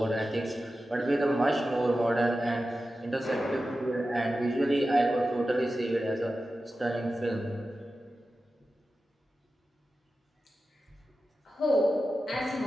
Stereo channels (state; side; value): normal; both; correlation 0.93